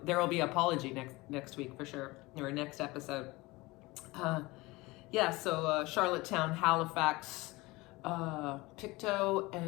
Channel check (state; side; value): quieter; right; 21.9 dB